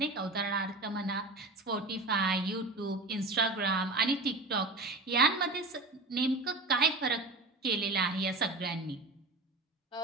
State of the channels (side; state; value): left; quieter; 3.1 dB